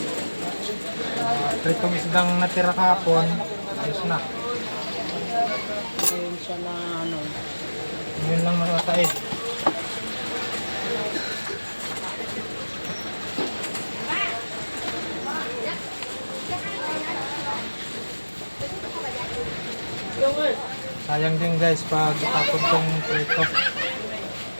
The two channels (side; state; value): both; inverted; correlation -1.00